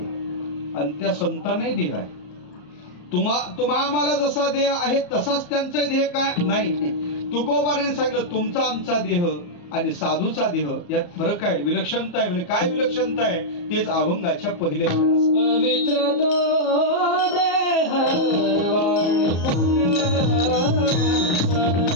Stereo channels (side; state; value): right; late; 34 ms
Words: आणि त्या संतांनाही देह आहे. तुम्हाला जसा देह आहे तसाच त्यांचा देह काय नाही. तुकोबाराने सांगितलं, तुमचा आमचा देह आणि साधूचा देह यात फरक आहे, विलक्षणता आहे. म्हणजे काय विलक्षणता आहे तेच अभंगाच्या पहिल्या पवित्र तो देह वाणी पवित्र